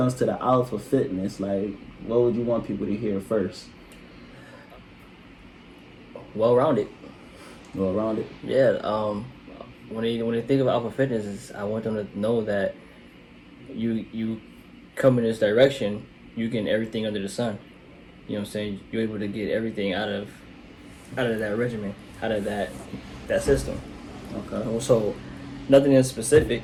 to the Owlpha fitness, like, what would you want people to hear first? Well-rounded. Well-rounded. Yeah. When they think of Owlpha Fitness, I want them to know that you come in this direction, you get everything under the sun. You know what I'm saying? You're able to get everything out of that regimen, out of that system. Okay. So nothing in specific,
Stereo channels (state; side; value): identical; both; correlation 1.00